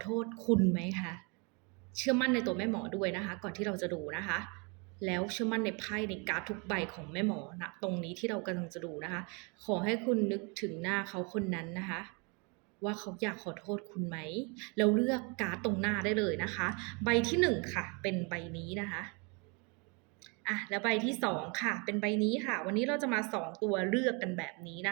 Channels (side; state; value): left; quieter; 32.3 dB